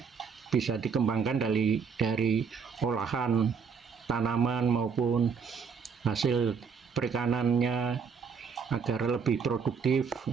bisa dikembangkan dari olahan tanaman maupun hasil perikanannya agar lebih produktif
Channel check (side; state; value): left; quieter; 6.1 dB